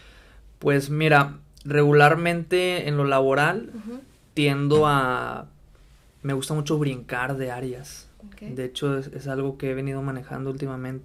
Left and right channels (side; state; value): both; identical; correlation 1.00